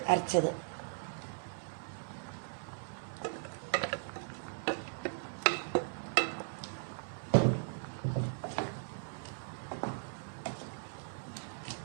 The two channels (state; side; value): silent; left; 53 dB below the other